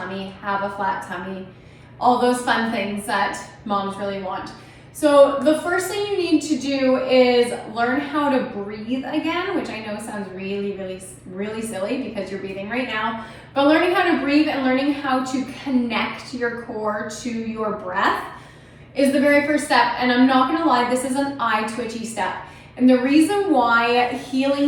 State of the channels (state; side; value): identical; both; correlation 1.00